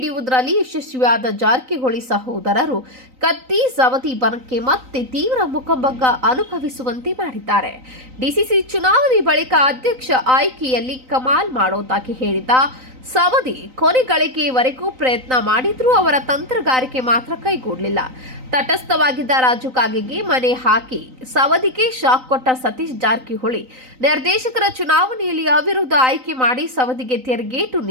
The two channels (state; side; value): late; left; 3.9 ms